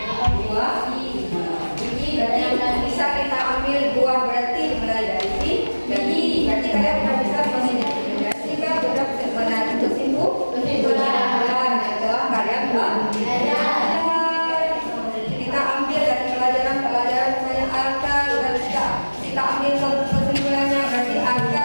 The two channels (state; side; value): inverted; both; correlation -1.00